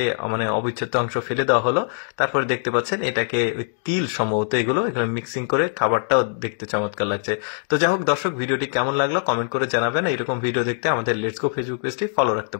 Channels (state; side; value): silent; right; digital silence